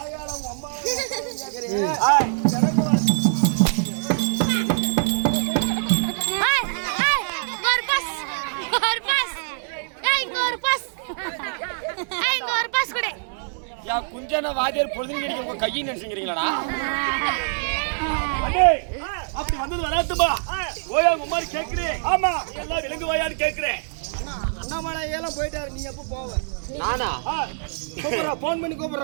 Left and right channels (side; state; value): left; silent; digital silence